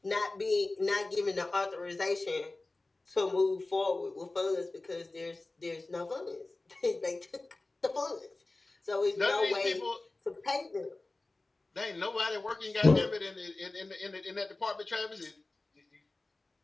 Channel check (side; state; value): right; quieter; 3.1 dB